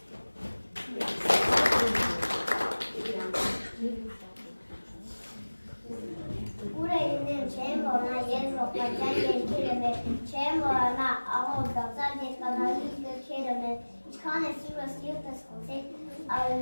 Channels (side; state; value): both; inverted; correlation -1.00